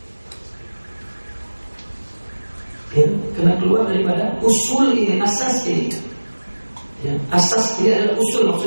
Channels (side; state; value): both; inverted; correlation -1.00